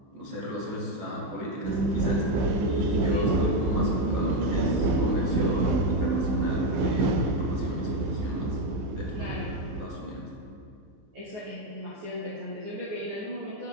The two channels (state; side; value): late; left; 15 ms